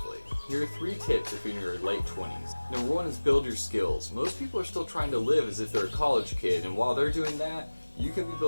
Here are 3 tips if you're in your late 20s. Number 1 is build your skills. Most people are still trying to live as if they're a college kid, and while they're doing that, you can be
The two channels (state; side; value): inverted; both; correlation -1.00